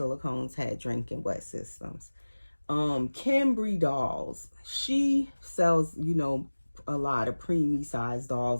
had drinking wet systems. Kimbry dolls, she sells, a lot of preemie size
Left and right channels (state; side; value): inverted; both; correlation -1.00